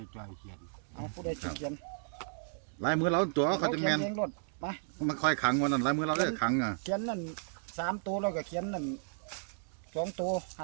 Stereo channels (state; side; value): silent; left; digital silence